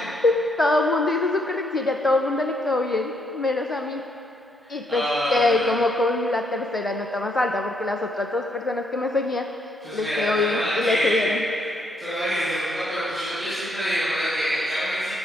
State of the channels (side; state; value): both; normal; correlation 0.73